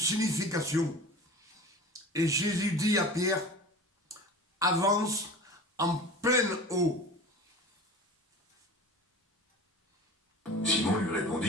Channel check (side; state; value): both; normal; correlation 0.37